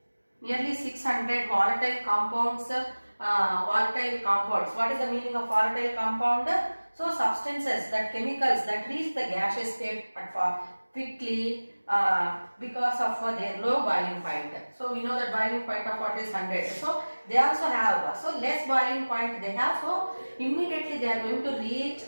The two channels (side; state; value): both; inverted; correlation -1.00